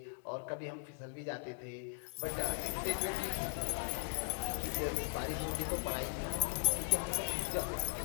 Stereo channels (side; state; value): right; silent; digital silence